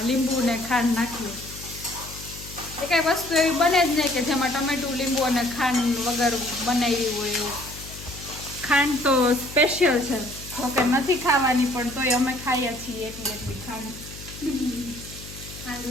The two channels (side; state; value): left; noise; hum, 14 dB below the sound